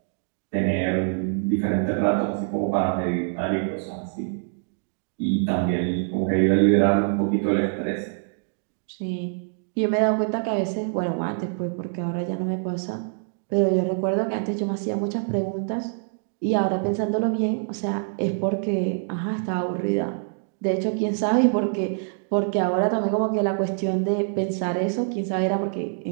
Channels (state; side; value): silent; left; digital silence